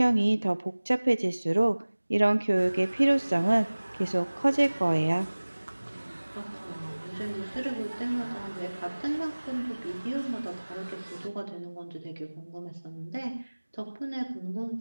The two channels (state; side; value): inverted; both; correlation -1.00